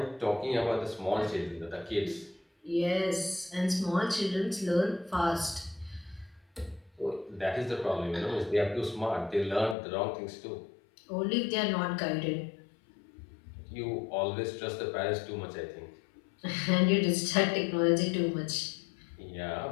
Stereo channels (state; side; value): drops out; right; at 9.8 s